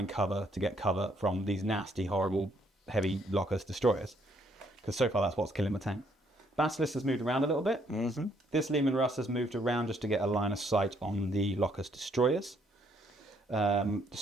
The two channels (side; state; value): both; normal; correlation 0.69